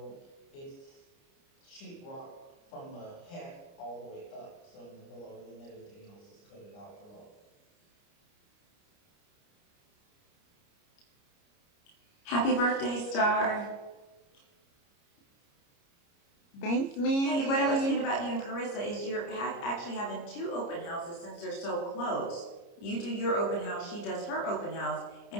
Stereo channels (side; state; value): right; late; 29 ms